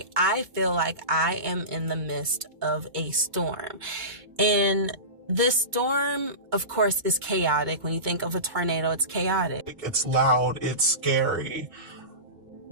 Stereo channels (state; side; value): late; left; 2.2 ms